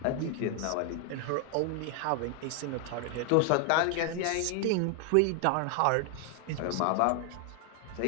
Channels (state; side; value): different; both; correlation 0.00